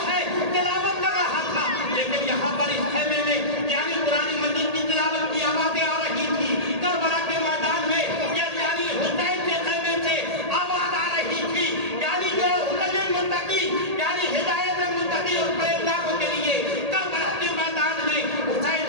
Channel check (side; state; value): left; late; 1.8 ms